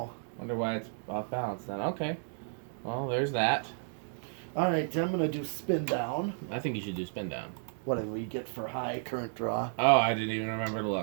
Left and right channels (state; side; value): silent; left; 56 dB below the other